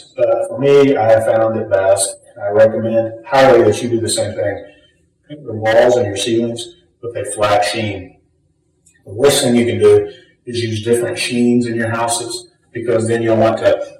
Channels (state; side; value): identical; both; correlation 1.00